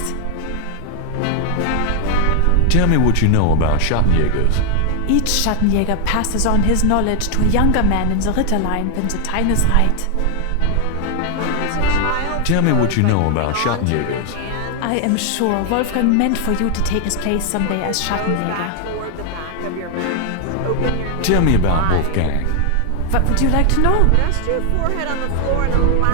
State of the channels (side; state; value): both; different; correlation 0.00